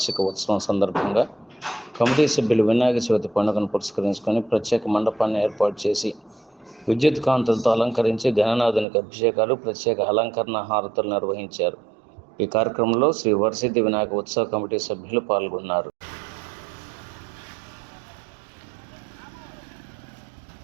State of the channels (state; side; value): drops out; left; at 8.8 s